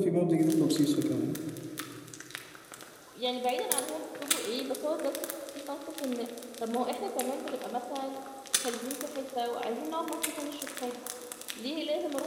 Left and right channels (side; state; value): both; identical; correlation 1.00